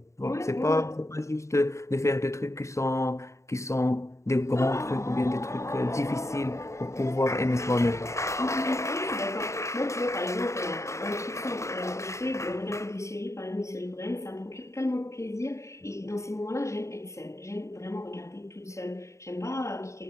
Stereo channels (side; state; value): right; late; 0.14 ms